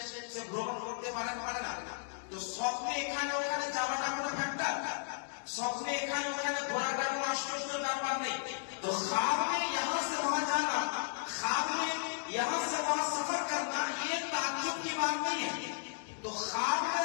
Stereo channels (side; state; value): right; silent; digital silence